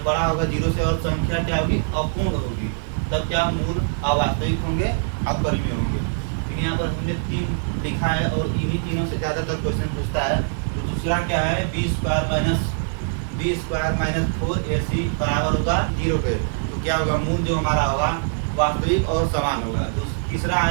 बड़ा होगा 0 से और संख्या क्या होगी, अपूर्ण होगी, तब क्या मूल अवास्तविक होंगे, अपरिमेय होंगे। लेकिन यहाँ पर हमने 3 लिखा है और इन्हीं तीनों से ज़्यादातर क्वेश्चन पूछता है। तो दूसरा क्या है, बी स्क्वायर माइनस 4ac बराबर होगा 0 के, तो क्या होगा, मूल जो हमारा होगा वास्तविक और समान होगा। तीसरा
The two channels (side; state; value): left; silent; digital silence